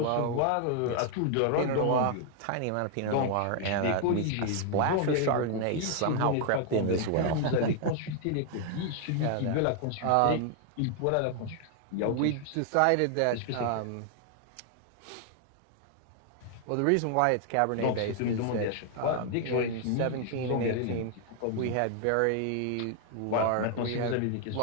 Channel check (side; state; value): both; different; correlation 0.00